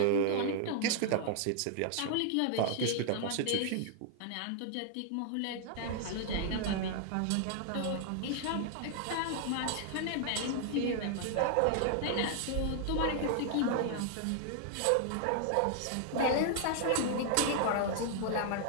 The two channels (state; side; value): different; both; correlation 0.00